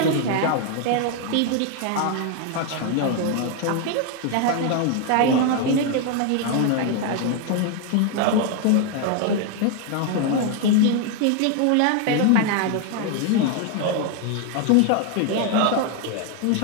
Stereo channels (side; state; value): both; different; correlation 0.01